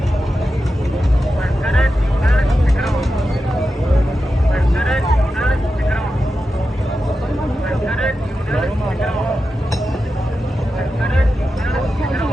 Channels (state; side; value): normal; both; correlation 0.91